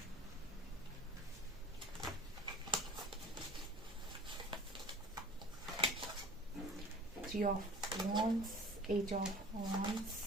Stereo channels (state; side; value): normal; both; correlation 0.43